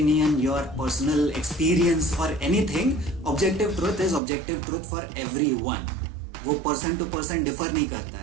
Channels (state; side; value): drops out; left; at 4.2 s